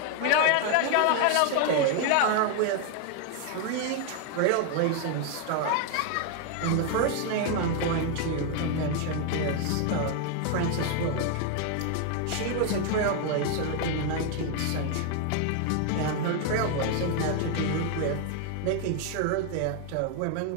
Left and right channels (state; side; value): different; both; correlation 0.01